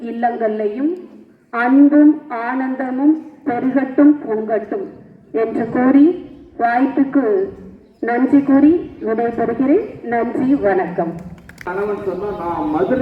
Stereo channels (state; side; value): identical; both; correlation 1.00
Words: இல்லங்கள்லையும் அன்பும் ஆனந்தமும் பெருகட்டும் பொங்கட்டும் என்று கூறி வாய்ப்புக்கு நன்றி கூறி விடைபெறுகிறேன். நன்றி, வணக்கம். கணவன் சொன்னா நான்